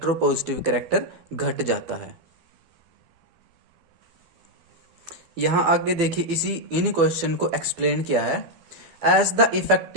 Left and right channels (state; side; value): late; left; 12 ms